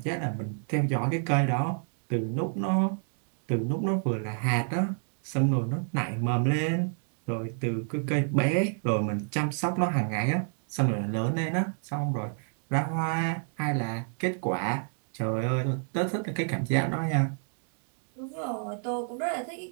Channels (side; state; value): left; silent; 58 dB below the other